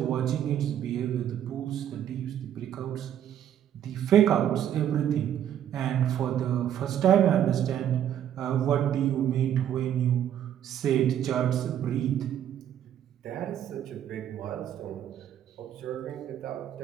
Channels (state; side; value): quieter; left; 10.3 dB